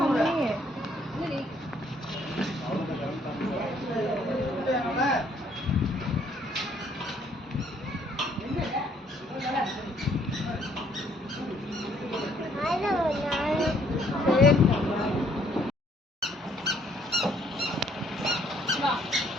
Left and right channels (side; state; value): both; normal; correlation 0.65